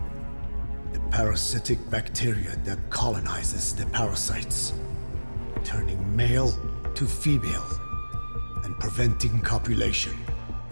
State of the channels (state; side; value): inverted; both; correlation -1.00